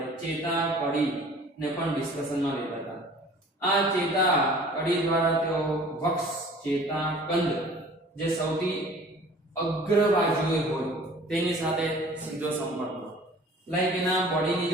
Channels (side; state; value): both; normal; correlation 0.48